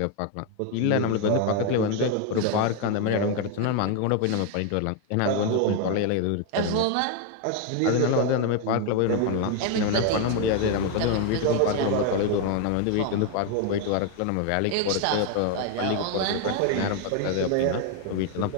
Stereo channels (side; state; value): both; different; correlation 0.01